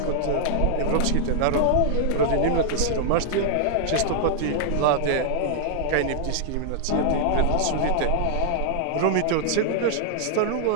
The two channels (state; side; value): different; both; correlation -0.01